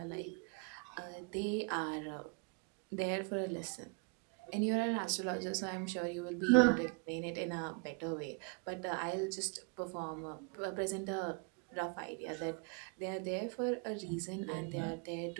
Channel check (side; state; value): left; quieter; 33.0 dB